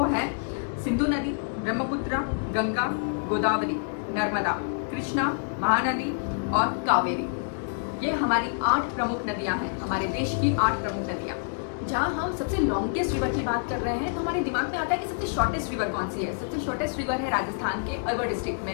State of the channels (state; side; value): silent; right; digital silence